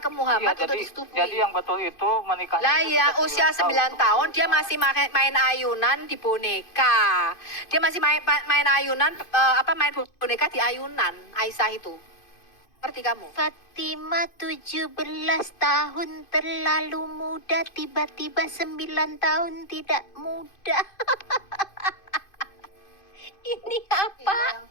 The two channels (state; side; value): late; right; 2.5 ms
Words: Muhammad untuk disetubui. Jadi yang betul itu menikahnya. Lah ya, usia 9 tahun dia masih main ayunan di boneka. Dia masih main ayunan main boneka di ayunan Aisyah itu. Ngerti kamu? Fatimah 17 tahun terlalu muda, tiba-tiba 9 tahun tidak muda. Ini